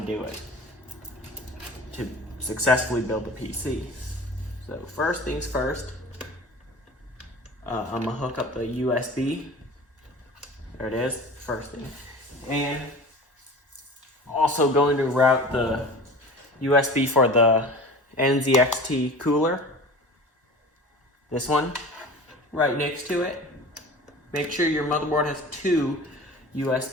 do it to successfully build the PC. So first things first, I'm gonna hook up the USB. There it is, first thing. And also going to route the USB for the NZXT cooler. This one, right next to it. Make sure your motherboard has 2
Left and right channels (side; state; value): both; normal; correlation 0.38